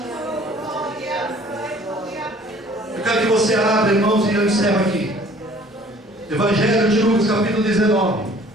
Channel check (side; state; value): both; normal; correlation 0.53